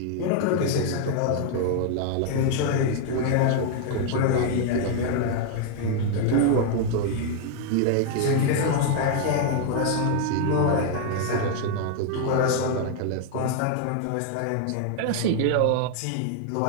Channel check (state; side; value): different; both; correlation 0.00